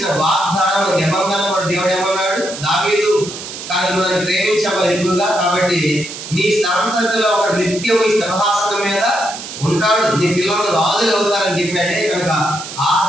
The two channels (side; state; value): right; noise; hiss, 10 dB below the sound